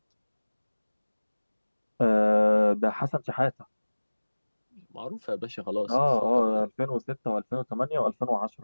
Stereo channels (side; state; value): both; inverted; correlation -1.00